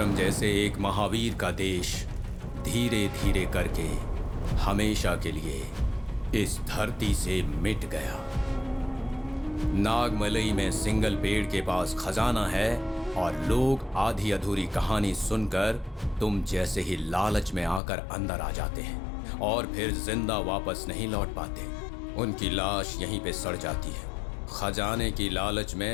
जैसे एक महावीर का देश धीरे धीरे करके हमेशा के लिए इस धरती से मिट गया। नागमलई में सिंगल पेड़ के पास खजाना है और लोग आधी अधूरी कहानी सुनकर तुम जैसे ही लालच में आकर अंदर आ जाते हैं और फिर जिंदा वापस नहीं लौट पाते। उनकी लाश यहीं पे सड़ जाती है। खजाने की लालच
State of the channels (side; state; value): right; drops out; at 17.8 s